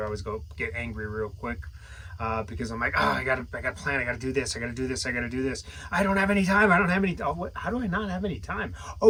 always get angry real quick. Because I'm like, oh, I gotta plan, I gotta do this, I gotta do this, I gotta do this. I don't have any time. How do I not have any time? Oh,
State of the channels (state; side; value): identical; both; correlation 1.00